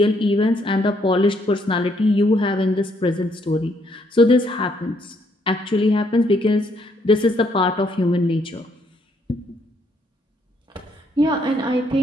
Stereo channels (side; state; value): both; normal; correlation 0.71